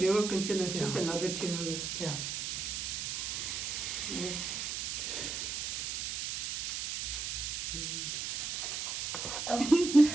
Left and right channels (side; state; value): right; noise; hiss, 3 dB below the sound